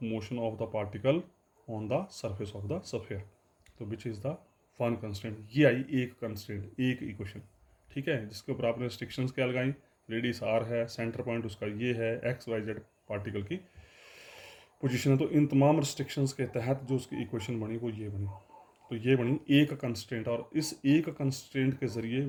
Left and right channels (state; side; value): identical; both; correlation 1.00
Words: motion of the particle on the surface of the sphere. तो which is the one constant. ये आई एक constant, एक equation. ठीक है, जिसके ऊपर आपने रिस्ट्रिक्शंस क्या लगाई? रेडियस r है, सेंटर पॉइंट उसका ये है, x-y-z पार्टिकल की पोजीशन है। तो इन तमाम रिस्ट्रिक्शंस के तहत जो उसकी इक्वेशन बनी वो ये बनी। तो ये बनी एक कंस्टेंट, और इस एक कंस्टेंट के जरिए